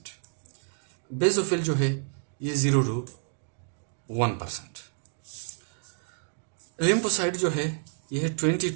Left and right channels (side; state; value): left; silent; digital silence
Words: बेसोफिल जो है ये 0 to 1%। लिम्फोसाइट जो है ये है 20